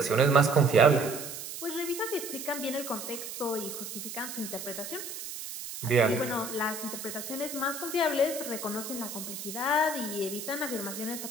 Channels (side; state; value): right; noise; hiss, 8 dB below the sound